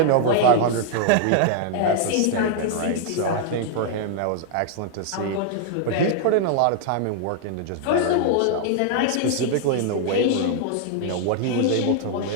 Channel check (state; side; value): different; both; correlation -0.01